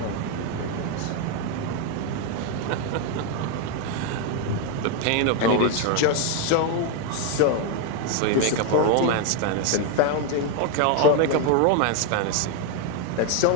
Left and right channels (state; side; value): different; both; correlation 0.01